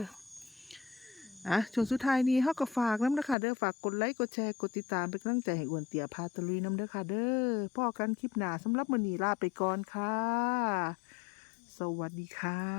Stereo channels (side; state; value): right; drops out; at 3.4 s